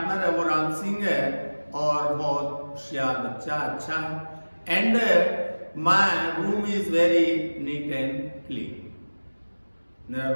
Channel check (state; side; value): inverted; both; correlation -1.00